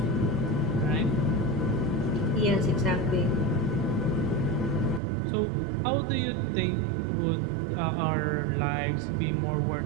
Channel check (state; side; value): drops out; left; at 5.0 s